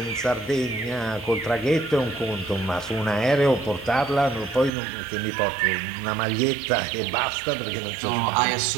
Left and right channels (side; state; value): left; drops out; at 4.7 s